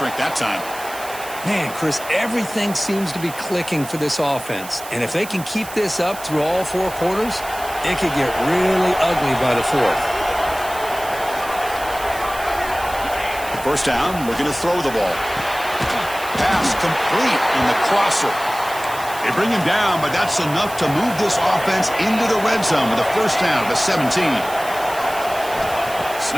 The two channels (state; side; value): noise; right; hiss, 14 dB below the sound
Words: that time. Man, Chris, everything seems to be clicking for this offense. And if they can keep this up through all 4 quarters, it could get really ugly by the 4th. First down, looking to throw the ball. Pass complete in the crosser. They bring him down, but that's enough to move this offense into the red zone with a first down of the 17.